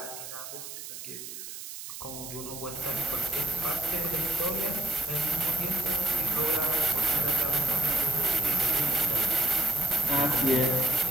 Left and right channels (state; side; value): noise; right; hiss, 10 dB below the sound